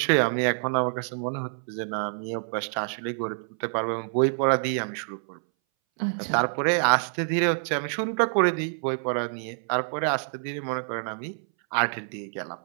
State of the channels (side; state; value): left; silent; 60 dB below the other